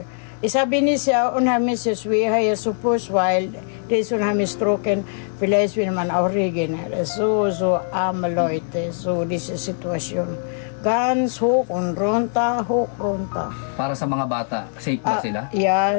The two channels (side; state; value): right; silent; 64 dB below the other